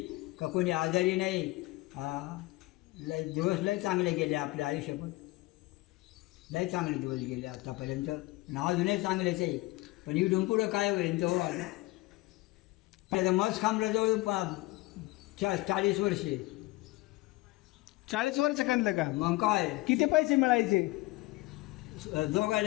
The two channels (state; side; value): quieter; right; 20.7 dB